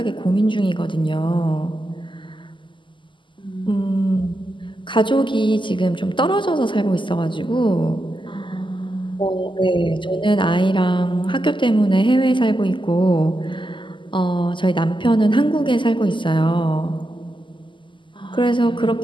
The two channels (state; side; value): late; right; 0.24 ms